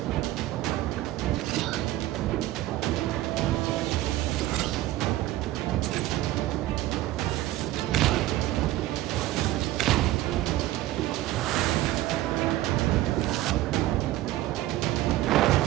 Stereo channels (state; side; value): quieter; left; 15.8 dB